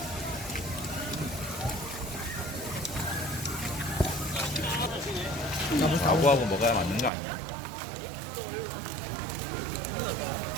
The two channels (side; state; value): left; drops out; at 7.1 s